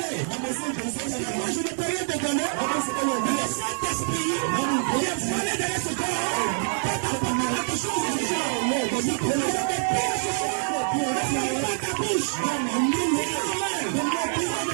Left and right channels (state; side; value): silent; left; 61 dB below the other